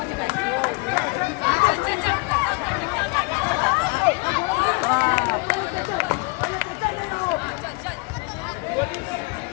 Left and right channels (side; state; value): right; quieter; 28.2 dB